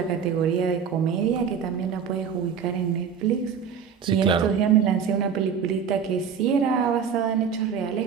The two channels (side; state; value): left; quieter; 7.1 dB